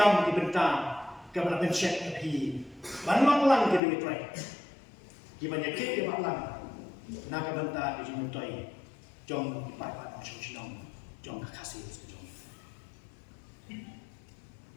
di bentang, kepada pencet api, banyak lang jadi mitrai, gimana kek dia malang, nak bentang di jumutoi, jom dipakai macam sinong, jom kasih sejong.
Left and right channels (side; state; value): right; drops out; at 3.8 s